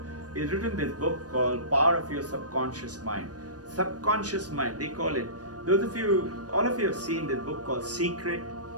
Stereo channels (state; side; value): late; left; 0.68 ms